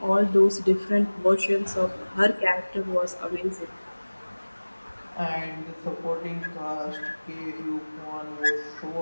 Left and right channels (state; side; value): inverted; both; correlation -1.00